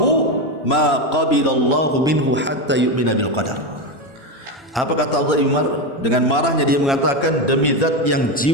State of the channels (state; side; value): normal; both; correlation 0.13